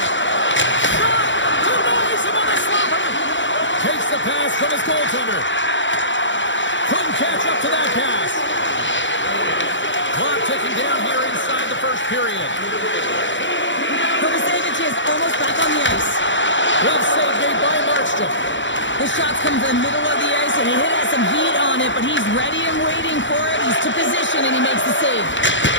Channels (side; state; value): right; late; 0.54 ms